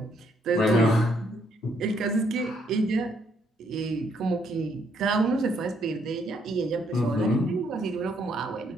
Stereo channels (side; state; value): both; normal; correlation 0.71